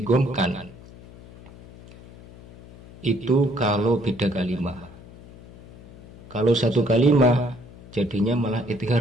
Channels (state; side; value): noise; left; hum, 20 dB below the sound